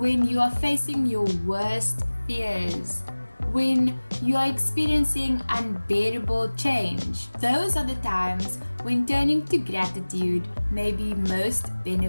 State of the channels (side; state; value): both; inverted; correlation -1.00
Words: you are facing your worst fears? When you are experiencing unbearable change? Those are the times when turning to gratitude may be most